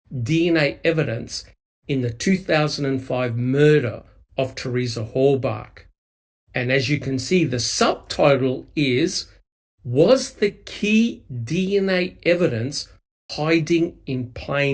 DNA evidence in the 2005 murder of Theresa Horbach? And as you can see, the subtitle is, Was the key DNA evidence hiding in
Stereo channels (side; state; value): both; identical; correlation 1.00